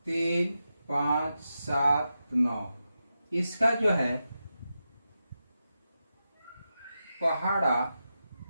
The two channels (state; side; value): inverted; both; correlation -0.89